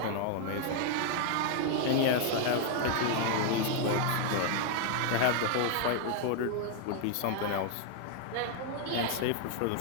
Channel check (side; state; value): both; different; correlation 0.00